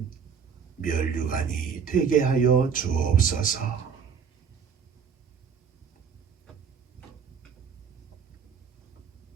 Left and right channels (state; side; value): quieter; left; 6.6 dB